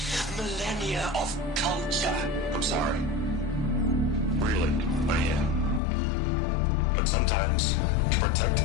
Millennia of culture. I'm sorry. Really, I am. But sometimes, to protect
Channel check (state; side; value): drops out; right; at 5.8 s